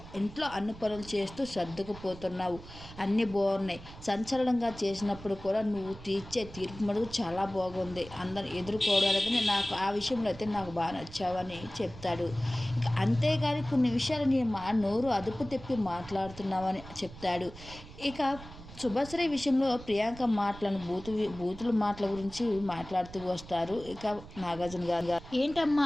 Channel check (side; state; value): right; noise; rumble, 16 dB below the sound